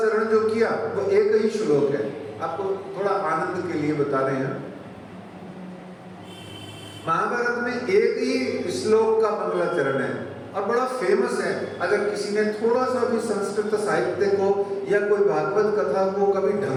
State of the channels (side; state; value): both; identical; correlation 1.00